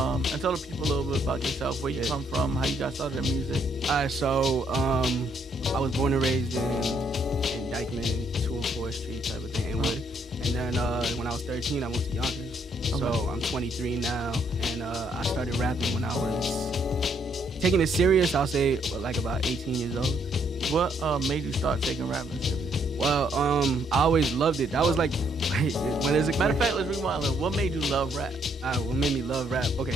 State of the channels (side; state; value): both; normal; correlation 0.71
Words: tell the people a little bit about yourself, where you come from, how you got started in music. Alright, so I was born and raised in Dykeman, 204 Street type of thing, Inwood. And then when I was 13, I moved to Yonkers. Okay. So I'm 23 now, and I started rapping when I was taking it serious. I'll say like about 18 years old. What made you start taking rapping serious? Well, I always loved it. That was like, when is it? Matter of fact, let's rewind. What made you love rap? What made me love rap?